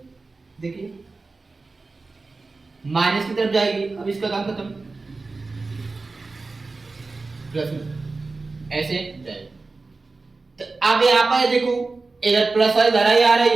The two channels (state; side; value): quieter; left; 3.7 dB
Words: देखिए माइनस की तरफ जाएगी। अब इसका काम खत्म, प्लस में ऐसे जाएगी। तो अब यहाँ पर देखो इधर प्लस वाली धारा आ